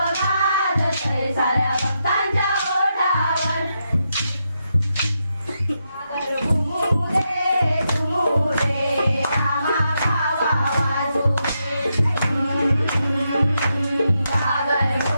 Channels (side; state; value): both; inverted; correlation -0.83